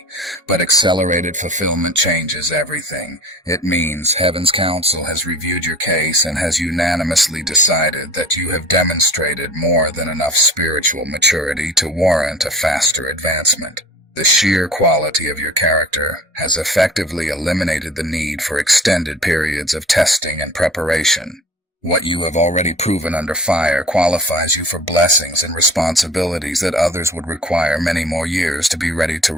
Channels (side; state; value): both; normal; correlation 0.43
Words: But accelerated fulfillment changes everything. It means Heaven's counsel has reviewed your case and has unanimously decided that you have demonstrated more than enough spiritual maturity to warrant a faster advancement. The sheer quality of your character has effectively eliminated the need for extended periods of testing and preparation. What you have already proven under fire qualifies you for blessings and responsibilities that others would require many more years to be ready to